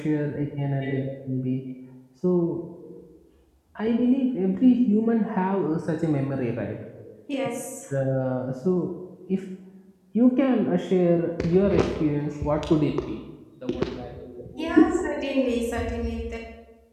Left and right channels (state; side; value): identical; both; correlation 1.00